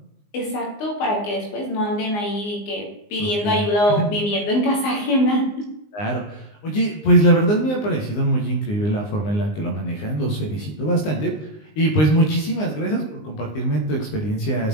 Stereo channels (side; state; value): right; late; 19 ms